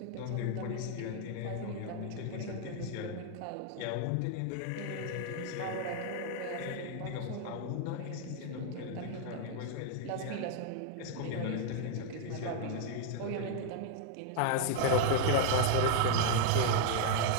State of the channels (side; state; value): both; different; correlation 0.00